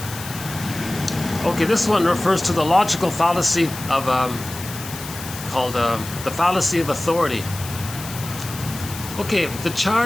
Okay, this one refers to the logical fallacy of called the fallacy of authority. Okay, the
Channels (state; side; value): noise; left; hiss, 11 dB below the sound